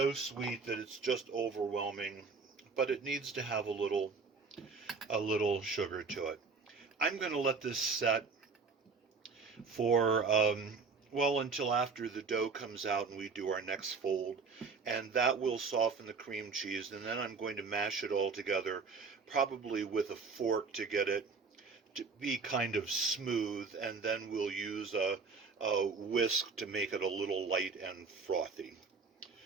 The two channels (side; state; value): left; quieter; 4.7 dB